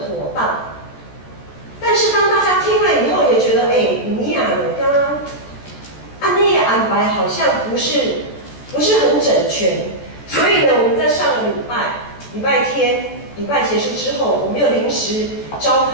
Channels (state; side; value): late; right; 14 ms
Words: 当。但是当大家听了以后，也觉得你呀，刚刚按那个安排好像不是很整全，所以呢，我们在上个礼拜天结束之后，我们又临时召